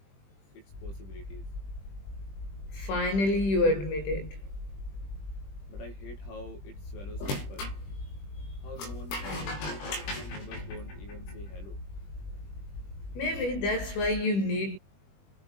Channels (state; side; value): late; right; 20 ms